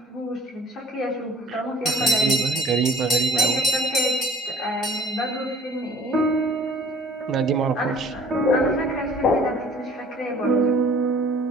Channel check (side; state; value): both; normal; correlation 0.51